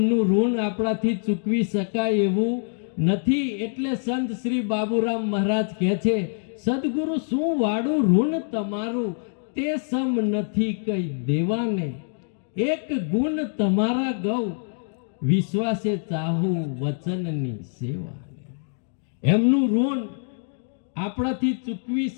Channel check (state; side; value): silent; right; digital silence